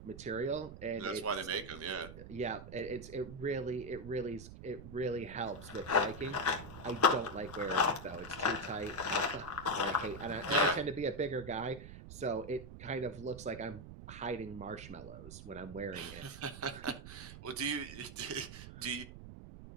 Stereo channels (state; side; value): noise; right; rumble, 13 dB below the sound